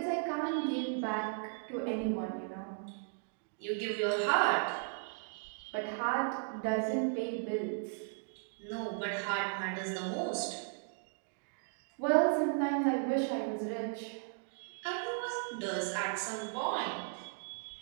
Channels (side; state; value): left; silent; digital silence